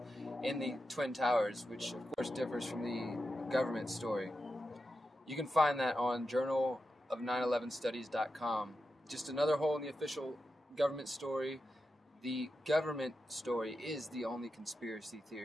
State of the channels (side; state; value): both; normal; correlation 0.89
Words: in the Twin Towers, which of course differs from the government story. You can find that on journalof911studies.com. Just another hole in the official government story. The government story is the only conspiracy